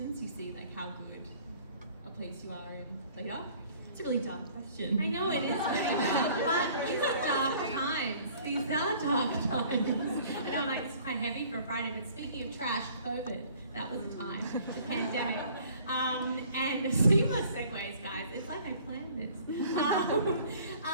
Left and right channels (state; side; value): inverted; both; correlation -0.54